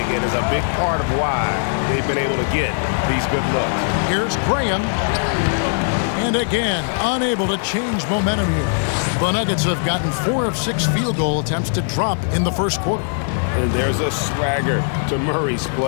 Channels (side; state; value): right; silent; digital silence